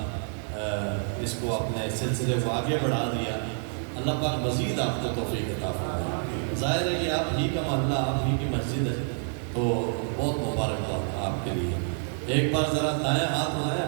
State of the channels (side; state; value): left; silent; 59 dB below the other